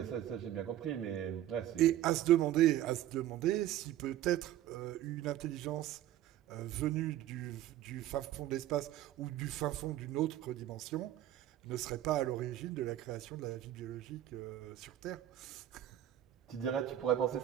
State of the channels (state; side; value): quieter; left; 12.7 dB